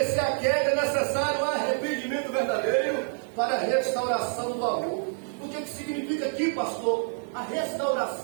a queda, é necessário um arrependimento verdadeiro para a restauração do amor. O que significa aqui, pastor? A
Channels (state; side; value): silent; left; 60 dB below the other